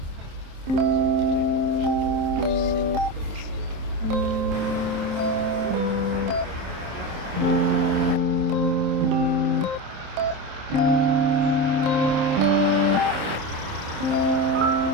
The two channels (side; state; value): left; late; 27 ms